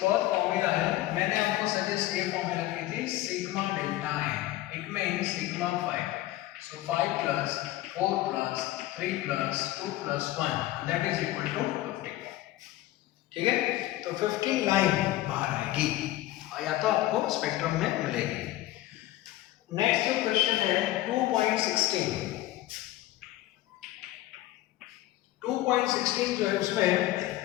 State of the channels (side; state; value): right; quieter; 15.8 dB